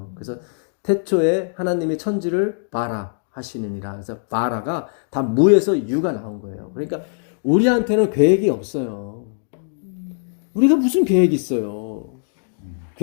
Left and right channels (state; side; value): silent; right; digital silence